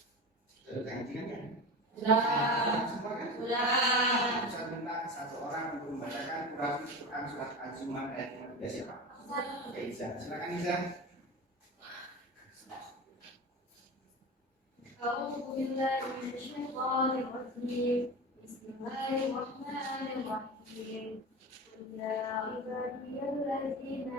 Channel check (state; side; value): normal; both; correlation 0.28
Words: Sudah ngajikan kan? Sudah. Semua kan? Sudah. Saya minta satu orang untuk membacakan Quran surat Al-Zumar ayat 15 siapa? Oke, Iza. Silakan Iza. أعوذ بالله من الشيطان الرجيم بسم الله الرحمن الرحيم قل يا عبادي الذين